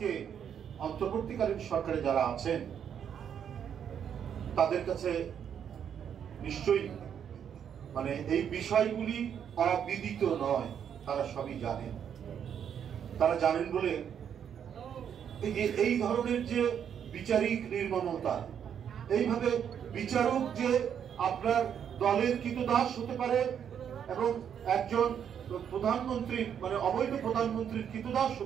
অন্তর্বর্তীকালীন সরকারে যারা আছেন তাদের কাছে নিশ্চয়ই এই বিষয়গুলি অবিদিত নয়, তারা সবই জানেন। তারা জানেন বলে এই ধরনের যে বিচারিক নির্মমতা, এইভাবে বিচারক যে আপনার দলের কৃতদাস হতে পারে এবং একজন প্রধানমন্ত্রী অবৈধ প্রধানমন্ত্রীর কৃতদাস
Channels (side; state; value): left; quieter; 8.4 dB